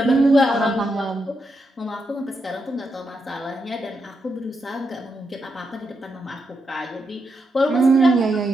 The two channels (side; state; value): both; normal; correlation 0.83